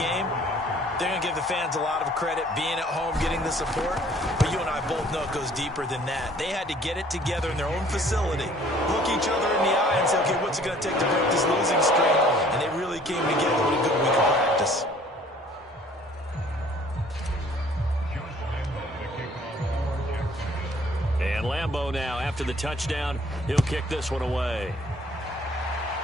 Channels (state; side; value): normal; both; correlation 0.56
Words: they're going to give the fans a lot of credit being at home, getting the support. But you and I both know it goes deeper than that. They had to get it together in their own facility, look each other in the eye and say, okay, what's it going to take to break this losing streak? And they really came together with a good week of practice. And Lambeau now, after the touchdown, he'll kick this one away.